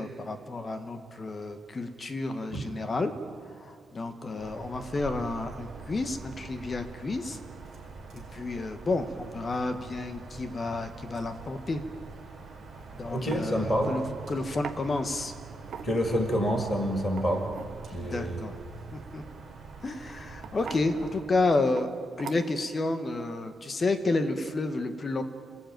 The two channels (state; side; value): normal; both; correlation 0.85